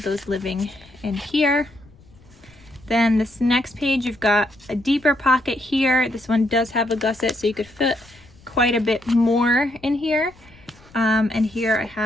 those living in here. Then this next page, you've got a deeper pocket here. This one does have a gusset, so you could fit quite a bit more in here. And here I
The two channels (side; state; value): left; noise; rumble, 26 dB below the sound